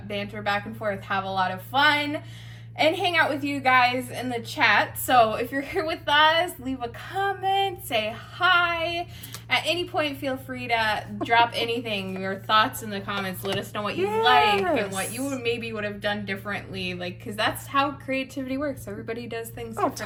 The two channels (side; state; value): both; identical; correlation 1.00